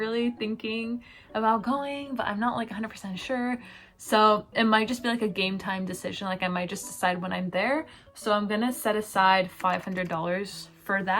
thinking about going, but I'm not like 100% sure. So it might just be like a game time decision, like I might just decide when I'm there. So I'm gonna set aside $500 for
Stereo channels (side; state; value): both; identical; correlation 1.00